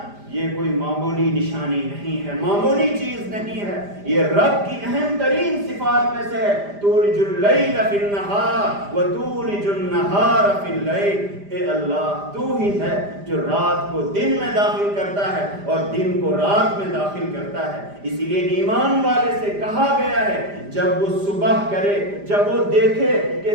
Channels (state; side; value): late; left; 5.0 ms